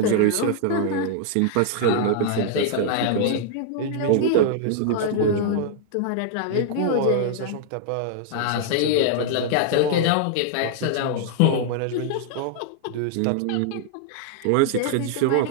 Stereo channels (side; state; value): both; different; correlation -0.01